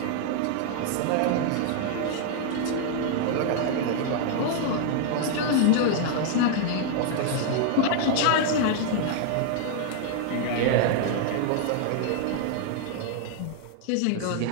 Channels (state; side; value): different; both; correlation 0.00